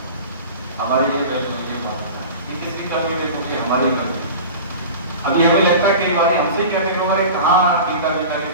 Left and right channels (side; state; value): both; inverted; correlation -0.35